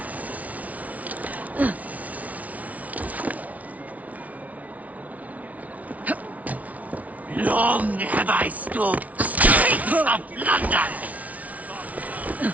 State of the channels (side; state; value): left; late; 0.070 ms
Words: Long have I stalked the streets of London.